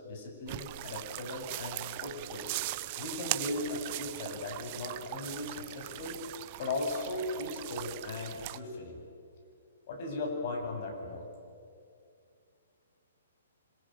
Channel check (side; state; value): both; inverted; correlation -0.37